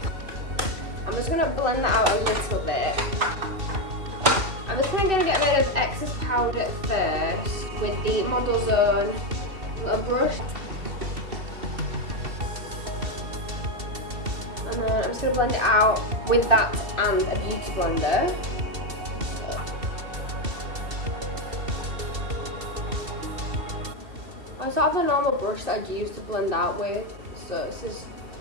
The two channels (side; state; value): left; late; 2.7 ms